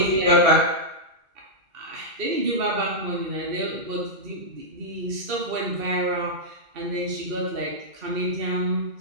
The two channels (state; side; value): late; left; 2.1 ms